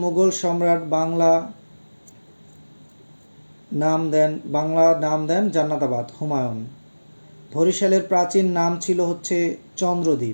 মুঘল সম্রাট বাংলা নাম দেন জান্নাতাবাদ? হুমায়ুন। বরিশালের প্রাচীন নাম ছিল হচ্ছে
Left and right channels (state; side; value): inverted; both; correlation -1.00